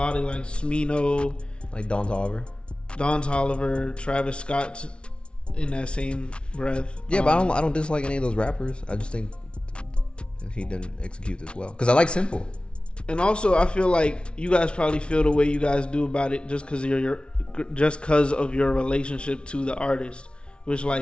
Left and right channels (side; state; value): right; late; 0.058 ms